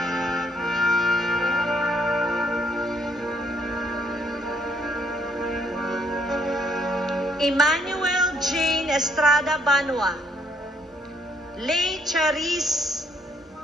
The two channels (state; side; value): normal; both; correlation 0.68